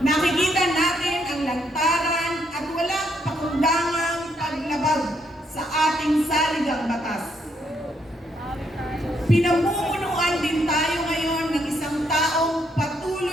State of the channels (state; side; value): normal; both; correlation 0.75